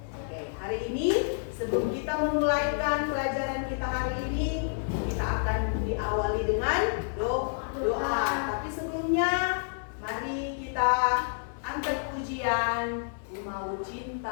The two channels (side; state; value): right; silent; digital silence